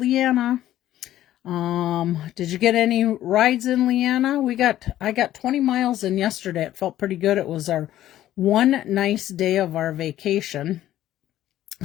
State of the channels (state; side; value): quieter; right; 13.1 dB